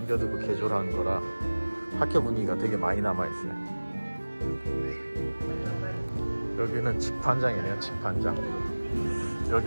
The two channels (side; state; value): both; inverted; correlation -1.00